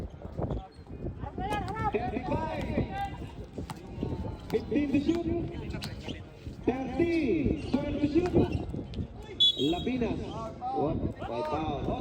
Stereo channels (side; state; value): both; identical; correlation 1.00